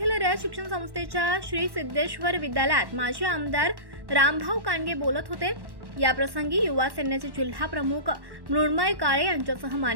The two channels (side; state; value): left; late; 1.1 ms